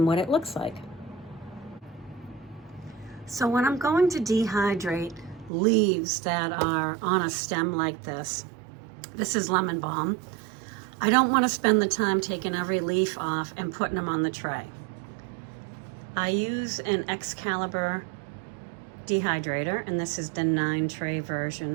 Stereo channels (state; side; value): drops out; left; at 5.5 s